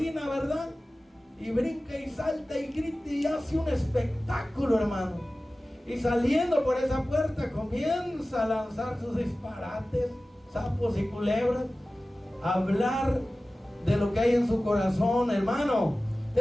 ¿verdad? Y brinca y salta y grita y hace un espectáculo, hermano. Y saliendo por esa puerta comienza a lanzar sus disparates, sapos y culebras, a hablar de lo que hay en su corazón, hermano.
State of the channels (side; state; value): both; normal; correlation 0.96